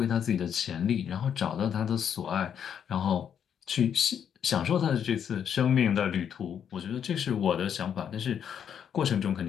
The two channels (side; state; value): right; quieter; 8.4 dB